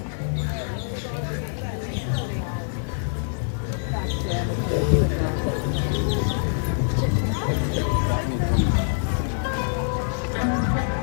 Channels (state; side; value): silent; right; 62 dB below the other